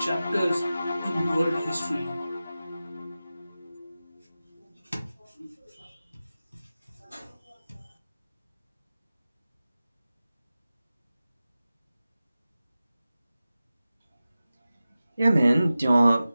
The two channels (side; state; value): both; inverted; correlation -0.95